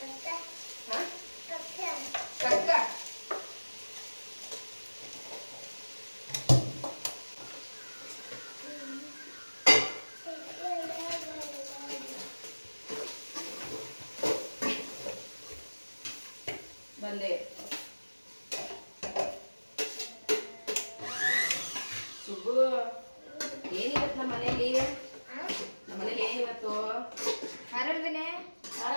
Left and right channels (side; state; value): both; inverted; correlation -1.00